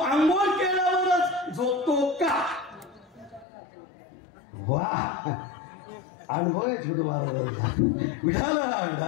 केल्यावरच झोपतो का? वा अनुभव आहे छोटू महाराज.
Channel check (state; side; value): drops out; right; at 3.5 s